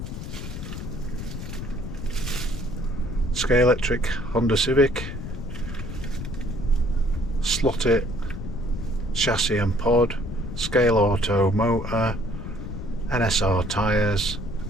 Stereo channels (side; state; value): left; noise; rumble, 8 dB below the sound